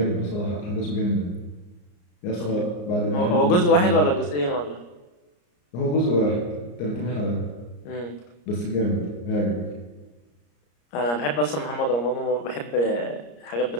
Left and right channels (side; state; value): right; late; 34 ms